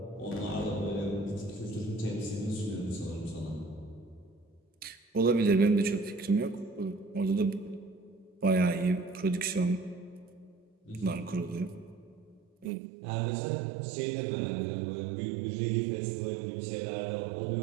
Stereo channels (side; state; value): left; drops out; at 12.7 s